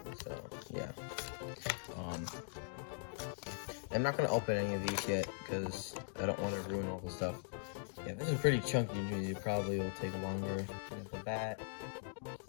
So yeah. I'm not gonna open any of these yet because I don't want to ruin all the stuff. Yeah, this is pretty chunky. Usually, it probably will take longer. There's the bat,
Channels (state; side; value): silent; right; digital silence